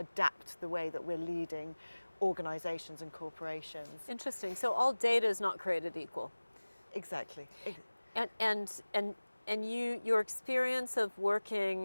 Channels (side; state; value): both; inverted; correlation -1.00